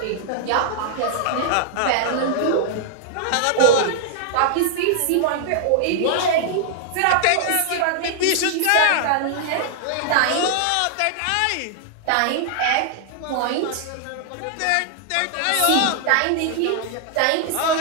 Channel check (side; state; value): both; different; correlation -0.01